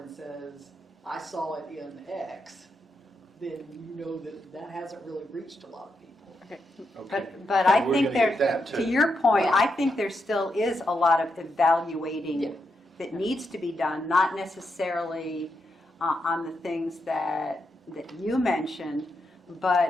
and says, I saw it in X, then you know that hasn't really reached a lot of people. Okay. But I We're think gonna get there, that, to too. your point, I think there still is a lot of Yeah. evaluating that needs to be done, not necessarily on the things that you mentioned,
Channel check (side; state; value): both; normal; correlation 0.83